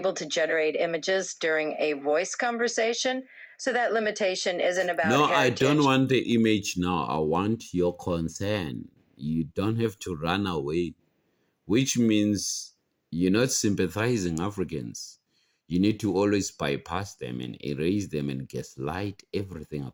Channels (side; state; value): both; identical; correlation 1.00